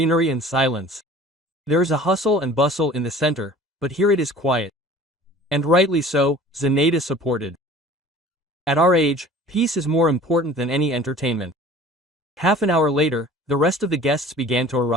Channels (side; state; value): both; normal; correlation 0.46